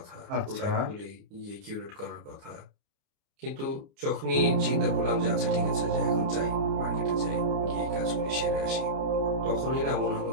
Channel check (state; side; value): late; left; 29 ms